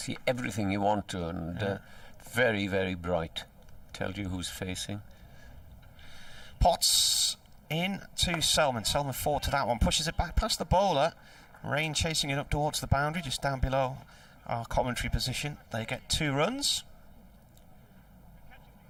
everything you want to, and very, very bright. Tells you who's facing. Potts in to Selman. Selman forward to that one, pushes it back past the bowler. Rain chasing it up towards the boundary, just down below our commentary position. They get 2 runs.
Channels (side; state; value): both; identical; correlation 1.00